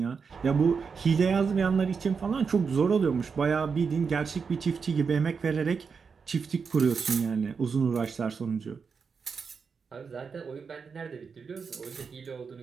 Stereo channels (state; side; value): quieter; left; 5.6 dB